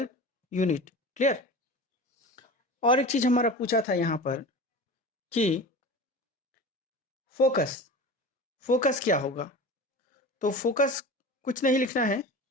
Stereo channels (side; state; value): both; normal; correlation 0.33